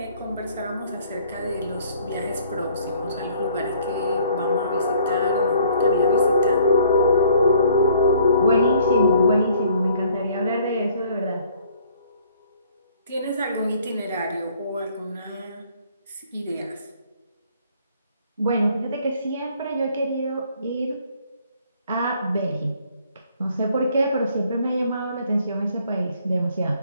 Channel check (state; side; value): inverted; both; correlation -0.60